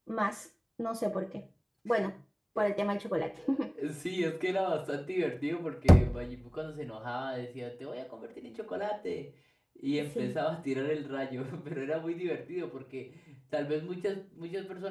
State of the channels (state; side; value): identical; both; correlation 1.00